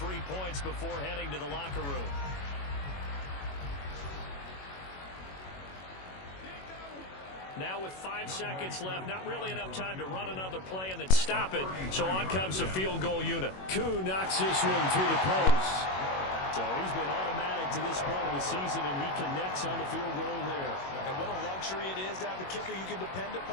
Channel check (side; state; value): right; late; 21 ms